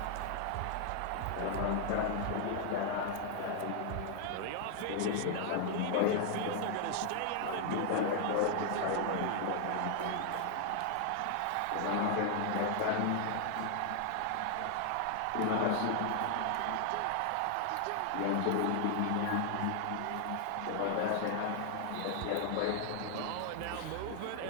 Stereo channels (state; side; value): different; both; correlation 0.00